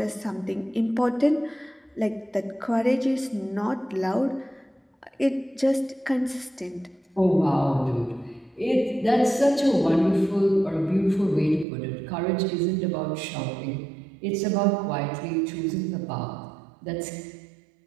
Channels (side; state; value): left; drops out; at 11.7 s